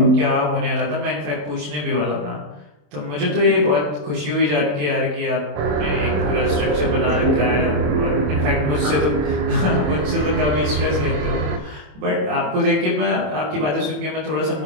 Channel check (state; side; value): late; left; 27 ms